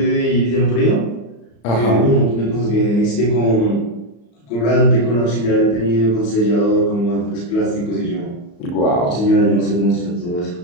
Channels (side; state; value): right; late; 34 ms